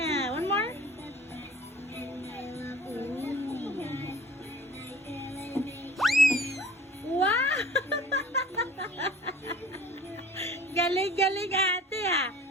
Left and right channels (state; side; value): normal; both; correlation 0.46